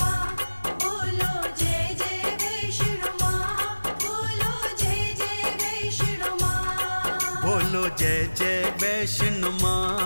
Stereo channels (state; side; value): inverted; both; correlation -1.00